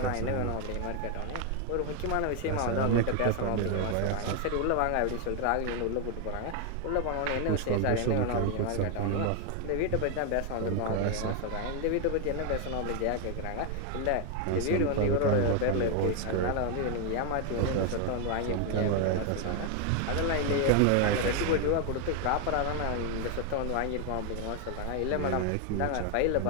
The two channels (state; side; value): different; both; correlation 0.01